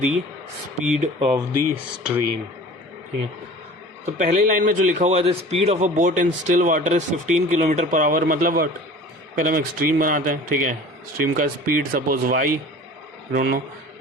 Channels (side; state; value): both; normal; correlation 0.41